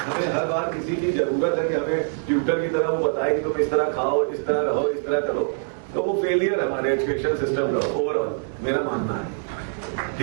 हमें हर बार किसी की जरूरत है कि हमें ट्यूटर की तरह वो बताए कि तुम इस तरह खाओ, इस तरह रहो, इस तरह करो, तो वो फेलियर है हमारे एजुकेशन सिस्टम का ओवरऑल, मेरा मानना है।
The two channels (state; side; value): silent; left; digital silence